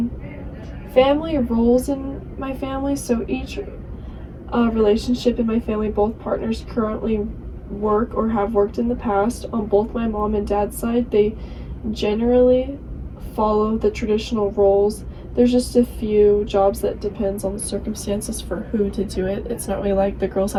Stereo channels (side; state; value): both; identical; correlation 1.00